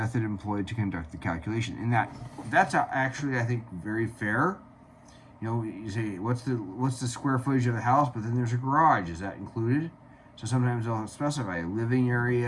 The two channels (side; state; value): both; identical; correlation 1.00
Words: employed to conduct the calculation. And that's actually, I think, very fair. You say, what's the square footage of the house, but then there's a garage. Is that included? So sometimes they'll specify a living